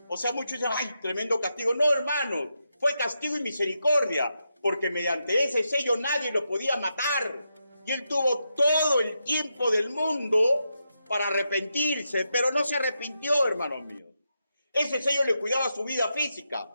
O sea, muchos dicen, ¡ay, tremendo castigo! No, hermano, fue castigo y misericordia, porque mediante ese sello nadie lo podía matar. Y él tuvo todo el tiempo del mundo para arrepentirse, pero no se arrepintió, hermanos míos. Ese sello le cuidaba su vida física.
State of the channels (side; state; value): both; inverted; correlation -0.85